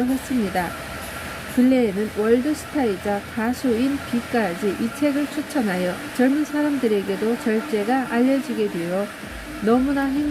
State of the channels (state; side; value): identical; both; correlation 1.00